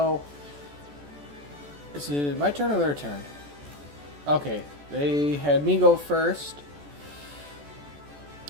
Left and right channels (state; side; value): late; left; 14 ms